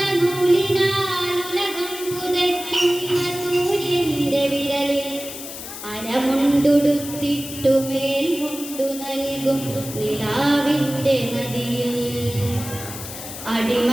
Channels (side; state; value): left; noise; hiss, 10 dB below the sound